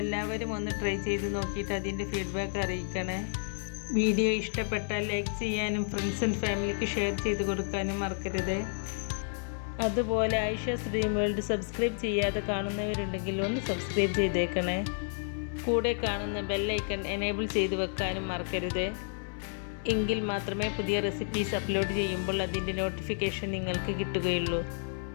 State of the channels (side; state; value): right; silent; 57 dB below the other